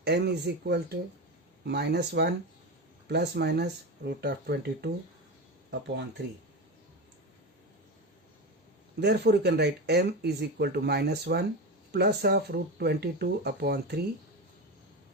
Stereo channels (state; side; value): normal; both; correlation 0.21